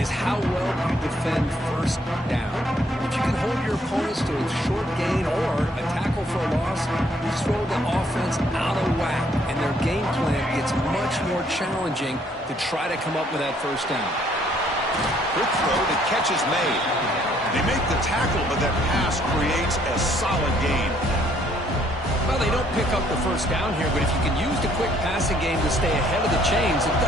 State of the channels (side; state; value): both; normal; correlation 0.66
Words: how well you defend 1st down. If you can hold your opponents to a short gain or a tackle for a loss, you throw the offense out of whack, and their game plan gets much more challenging to try to come up with that 1st down. Quick throw, the catch is made. They make the tackle, but that pass creates a solid gain. Well, they don't pick up the first down here, but if you can use the quick passing game to stay ahead of the chains, it